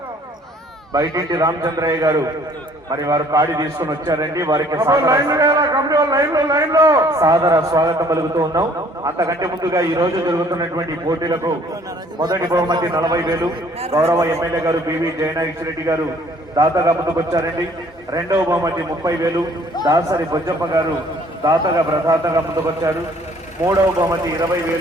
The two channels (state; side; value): normal; both; correlation 0.58